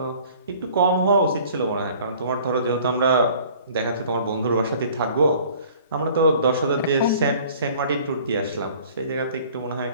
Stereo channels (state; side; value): inverted; both; correlation -0.52